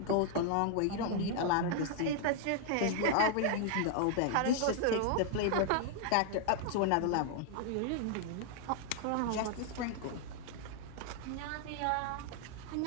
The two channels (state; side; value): different; both; correlation 0.00